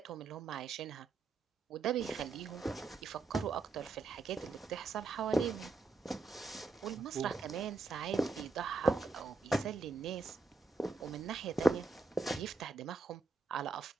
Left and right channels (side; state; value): left; quieter; 3.7 dB